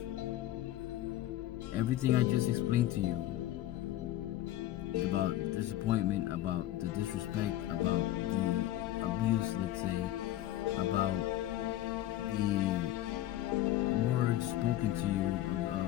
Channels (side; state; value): right; quieter; 14.0 dB